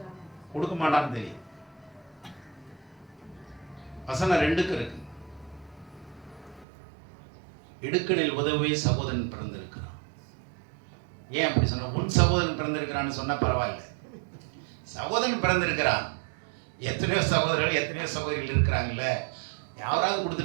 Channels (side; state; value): left; drops out; at 6.7 s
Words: கொடுக்க மாட்டான்னு தெரியும். வசனம் 2க்கு இருக்கு. இடுக்கணில் உதவே சகோதரன் பிறந்திருக்கிறான். ஏன் அப்படி சொன்ன? உன் சகோதரன் பிறந்திருக்கிறான்னு சொன்னா பரவாயில்ல, சகோதரன் பிறந்திருக்கிறான். எத்தனையோ சகோதரர்கள் எத்தனையோ சகோதரிகள் இருக்கிறாங்கல்ல, யாராவது